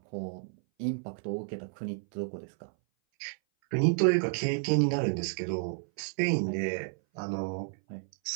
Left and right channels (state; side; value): silent; left; 57 dB below the other